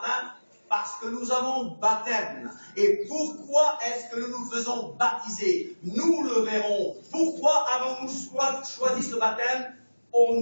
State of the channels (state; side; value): inverted; both; correlation -1.00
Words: parce que nous avons baptême. Et pourquoi est-ce que nous nous faisons baptiser? Nous le verrons. Pourquoi avons-nous choisi ce baptême? Au